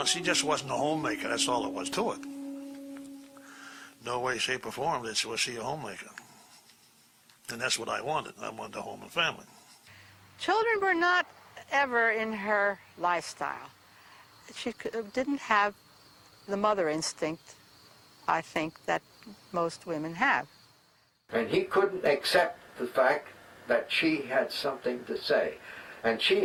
she just wasn't a homemaker. That's all there was to it. No way, shape, or form was she a homemaker. And that's what I wanted. I wanted a home and family. Children were not ever in her lifestyle. She didn't have the mother instinct, I think, that most women have. And he couldn't accept the fact that she had something to say. And she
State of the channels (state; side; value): identical; both; correlation 1.00